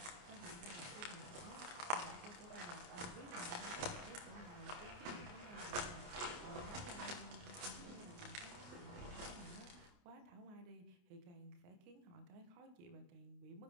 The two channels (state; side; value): late; left; 28 ms